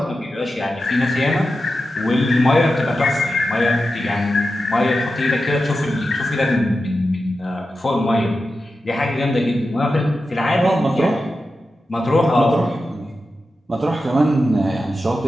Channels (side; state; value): both; normal; correlation 0.91